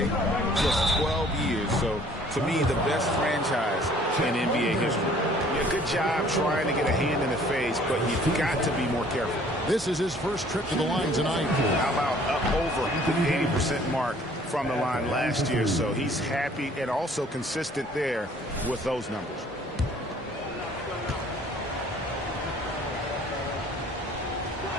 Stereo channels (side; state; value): both; normal; correlation 0.56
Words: just 12 years. So, to me, the best franchise in NBA history. Yeah, good job trying to get a hand in the face, but you've got to be more careful. This is his first trip to the line tonight. How about up over the 80% mark from the line last year? So he's happy and also consistent there with those numbers.